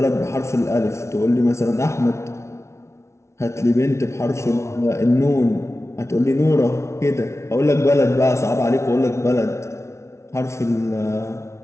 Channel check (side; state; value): right; late; 0.13 ms